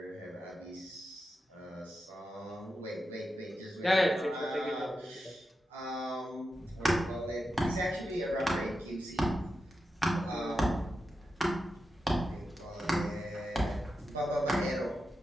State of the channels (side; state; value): both; normal; correlation 0.89